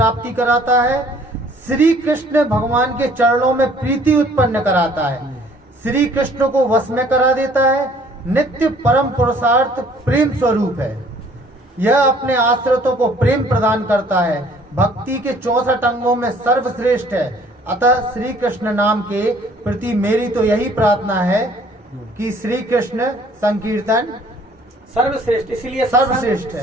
कराता है, श्री कृष्ण भगवान के चरणों में प्रीति उत्पन्न कराता है, श्री कृष्ण को वश में करा देता है, नित्य परम पुरुषार्थ प्रेम स्वरूप है। यह अपने आश्रितों को प्रेम प्रदान करता है, भक्ति के 64 अंगों में सर्वश्रेष्ठ है। अतः श्री कृष्ण नाम के प्रति मेरी तो यही प्रार्थना है कि श्री कृष्ण संकीर्तन सर्वश्रेष्ठ, इसलिए सर्वश्रेष्ठ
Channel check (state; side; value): normal; both; correlation 0.57